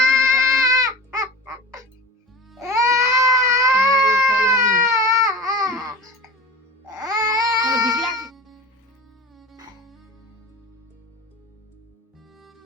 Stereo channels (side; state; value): both; normal; correlation 0.33